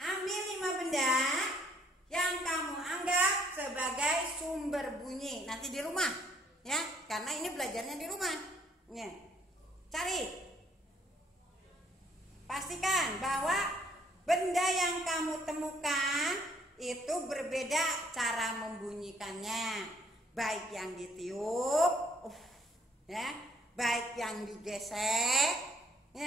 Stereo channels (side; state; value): both; normal; correlation 0.63